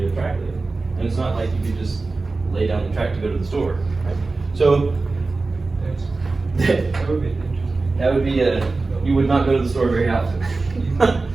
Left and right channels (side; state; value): left; quieter; 3.7 dB